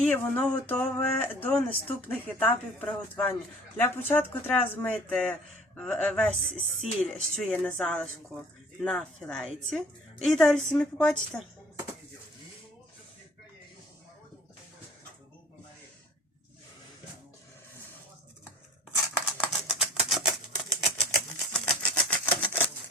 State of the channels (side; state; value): both; normal; correlation 0.49